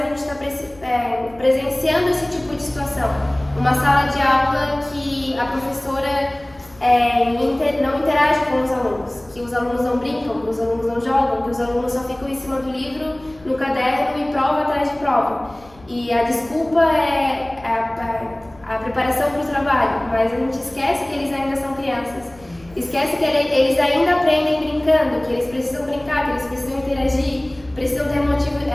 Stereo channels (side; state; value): left; noise; rumble, 25 dB below the sound